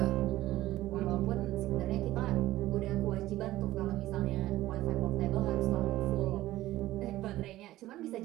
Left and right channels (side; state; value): left; quieter; 15.8 dB